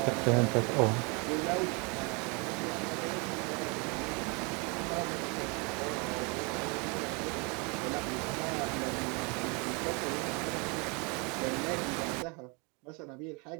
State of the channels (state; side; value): quieter; left; 31.1 dB